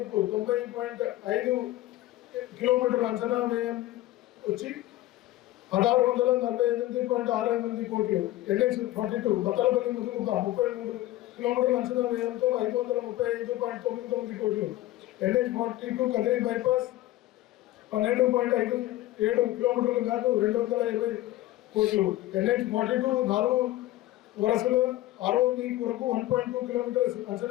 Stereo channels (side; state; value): right; quieter; 15.9 dB